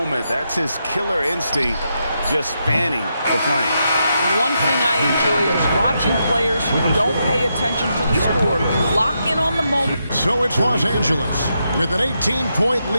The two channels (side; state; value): both; inverted; correlation -0.82